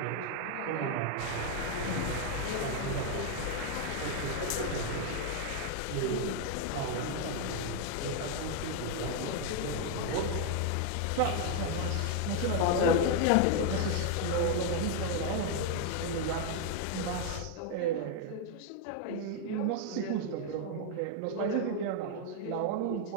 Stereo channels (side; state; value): both; different; correlation 0.00